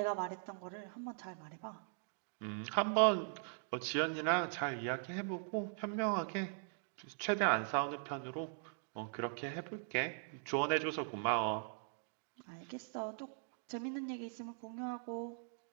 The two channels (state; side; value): silent; left; digital silence